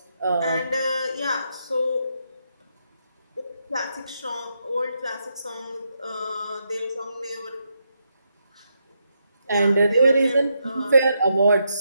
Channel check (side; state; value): both; inverted; correlation -0.81